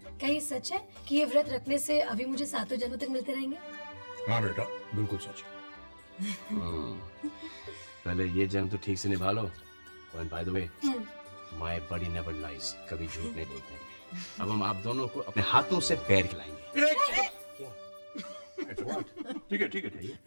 क्या ये सच है कि ये व्रत रखने से अभी मुझे 7 जन्मों तक मिलते रहेंगे? हाँ बेटा, बिल्कुल सच। पहले ये जन्म तो ठीक से निभा लो। And by the way, my body never lies, कभी झूठ नहीं बोलते। अब हम आप दोनों को अपने हाथों से पैर खिलाएंगे। ठीक है ठीक है।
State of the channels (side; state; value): both; inverted; correlation -1.00